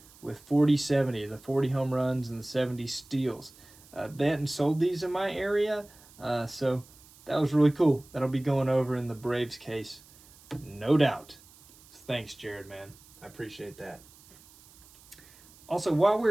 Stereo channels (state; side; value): noise; right; hiss, 24 dB below the sound